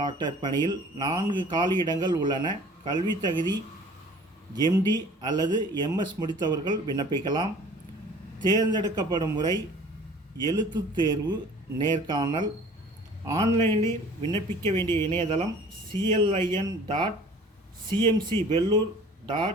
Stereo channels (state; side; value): normal; both; correlation 0.48